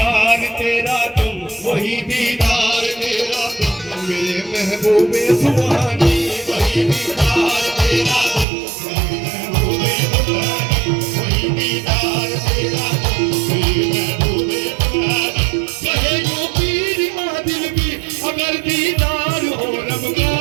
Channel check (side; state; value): left; drops out; at 8.5 s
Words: तेरा तुम, वही दीदार तेरा तुम, मेरे महबूबे सुबहानी, वही दीदार तेरा तुम, मेरे महबूबे सुबहानी, वही दीदार तेरा तुम, मेरे महबूबे सुबहानी। कहे यूं पीर आदिल भी अगर दीदार हो रब का,